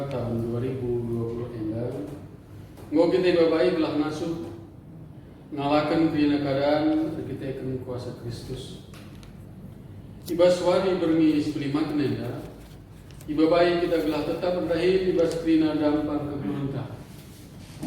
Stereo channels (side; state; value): both; identical; correlation 1.00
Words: tahun 2020 endah. Ngau kita babai belah ngasuh ngalakan krena keadaan kita akan kuasa Kristus. Ibas wari bermi sebelimat nenda. Ibabai kita gelah tetap berdahil ibas krena dampar kegelunta.